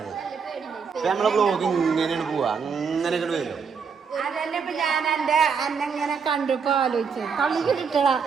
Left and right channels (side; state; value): left; quieter; 6.0 dB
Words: ഇപ്പൊ നമ്മളെ ബ്ലോഗ് ഇങ്ങനെയാണ് പോവാ, അങ്ങനെ ഇങ്ങോട്ട് വരും. അതന്നെ ഇപ്പൊ ഞാൻ എന്റെ അന്നെങ്ങനെ കണ്ടിപ്പോ ആലോചിച്ചു കളി കിട്ടടാ.